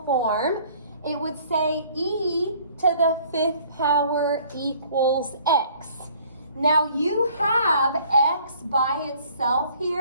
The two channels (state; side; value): inverted; both; correlation -0.56